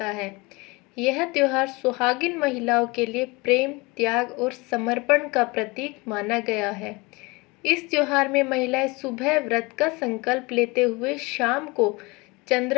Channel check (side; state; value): right; quieter; 25.4 dB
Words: है। यह त्योहार सुहागिन महिलाओं के लिए प्रेम, त्याग और समर्पण का प्रतीक माना गया है। इस त्योहार में महिलाएं सुबह व्रत का संकल्प लेते हुए शाम को